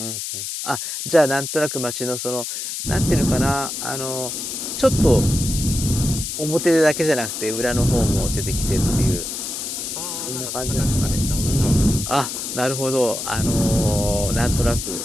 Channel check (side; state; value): left; noise; hiss, 5 dB below the sound